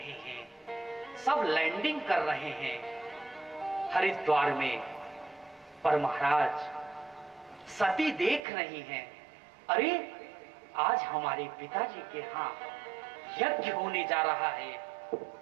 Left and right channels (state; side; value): drops out; left; at 8.4 s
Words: हैं, सब लैंडिंग कर रहे हैं हरिद्वार में। पर महाराज सती देख रही हैं, अरे आज हमारे पिताजी के यहाँ यज्ञ होने जा रहा है